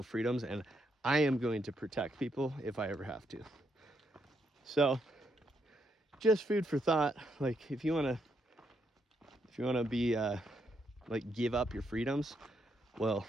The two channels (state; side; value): normal; both; correlation 0.78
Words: freedoms and I am going to protect people if I ever have to. So just food for thought. Like, if you want to be like, give up your freedoms, well,